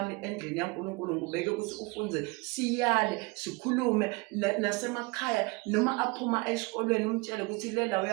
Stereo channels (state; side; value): quieter; left; 26.5 dB